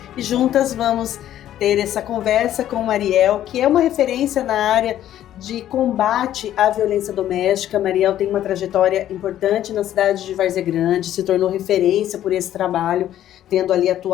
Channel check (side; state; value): right; quieter; 11.9 dB